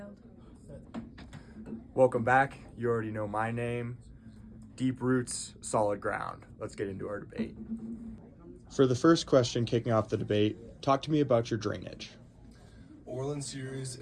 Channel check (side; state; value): both; identical; correlation 1.00